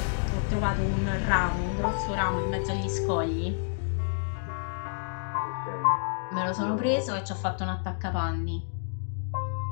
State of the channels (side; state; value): right; silent; digital silence